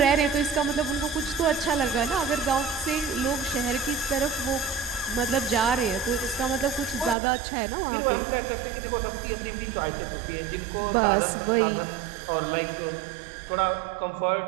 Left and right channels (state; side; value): drops out; left; at 7.2 s